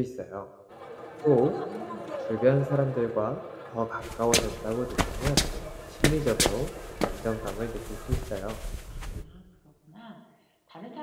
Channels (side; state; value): both; identical; correlation 1.00